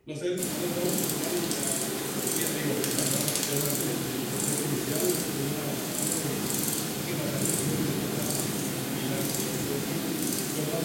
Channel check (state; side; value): identical; both; correlation 1.00